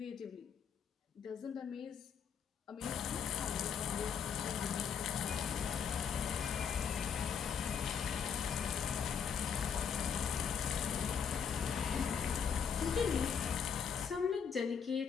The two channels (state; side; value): quieter; right; 7.1 dB